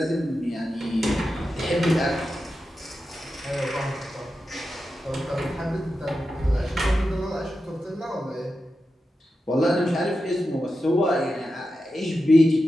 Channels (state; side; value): normal; both; correlation 0.90